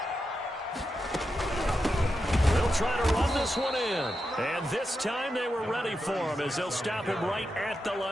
Try to run this one in. And this time they were ready for him as they'll stop him right at the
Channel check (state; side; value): normal; both; correlation 0.88